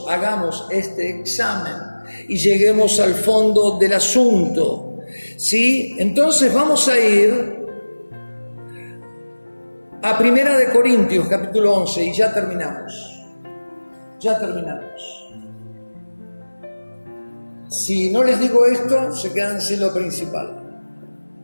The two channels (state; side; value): inverted; both; correlation -1.00